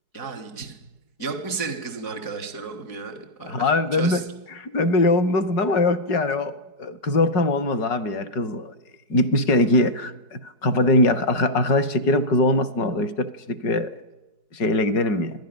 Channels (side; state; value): right; late; 4.7 ms